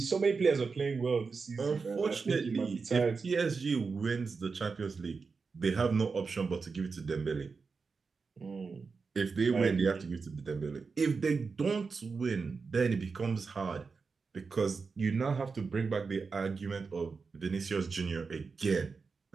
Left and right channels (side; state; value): left; quieter; 4.8 dB